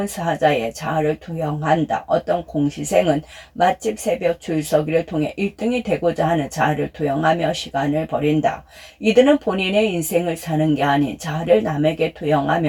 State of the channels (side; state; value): both; identical; correlation 1.00